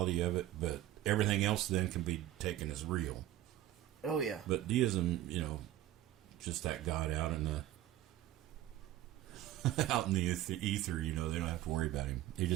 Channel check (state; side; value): quieter; left; 13.5 dB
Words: of it, but everything else then can be taken as real. Oh, yeah. But deism, just that God out in the ether, they don't have to worry about him. He